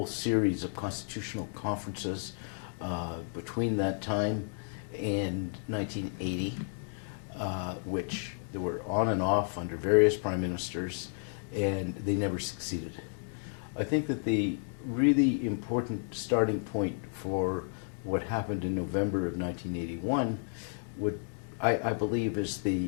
series of constitutional conferences between that time and 1980, which they were on and off under various prime ministers, and they never succeeded. I think that the really important starting point for what happened in November of 1981 I believe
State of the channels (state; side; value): silent; right; 56 dB below the other